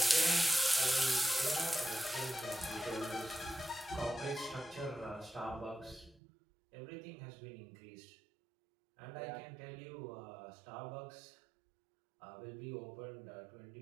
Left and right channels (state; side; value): drops out; left; at 6.2 s